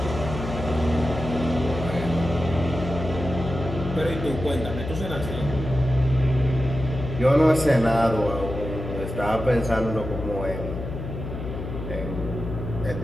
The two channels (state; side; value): noise; left; hum, 7 dB below the sound